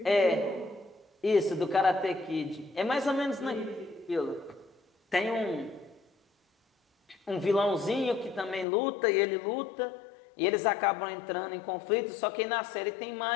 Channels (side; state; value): right; drops out; at 8.7 s